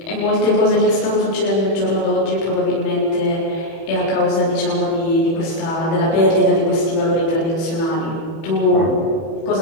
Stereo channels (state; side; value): late; right; 30 ms